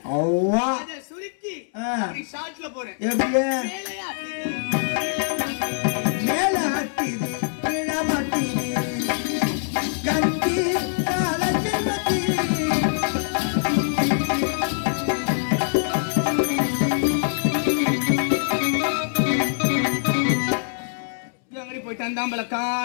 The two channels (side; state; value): right; silent; 63 dB below the other